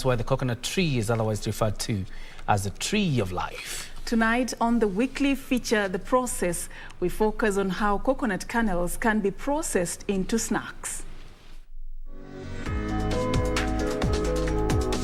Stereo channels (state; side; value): identical; both; correlation 1.00